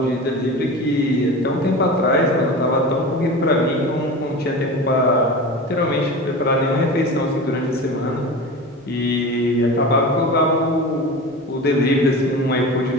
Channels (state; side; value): normal; both; correlation 0.31